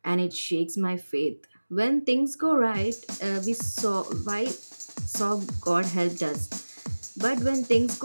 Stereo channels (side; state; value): both; inverted; correlation -1.00